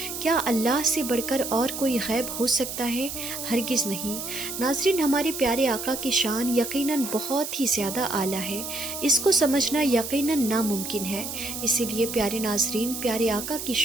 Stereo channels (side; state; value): right; noise; hiss, 6 dB below the sound